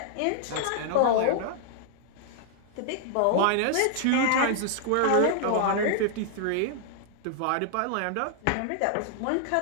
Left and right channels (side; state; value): both; different; correlation -0.01